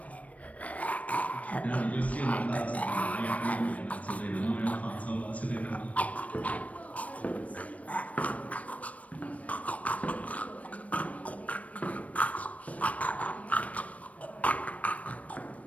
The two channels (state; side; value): late; right; 0.067 ms